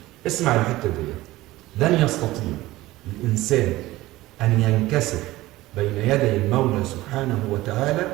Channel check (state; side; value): quieter; left; 17.8 dB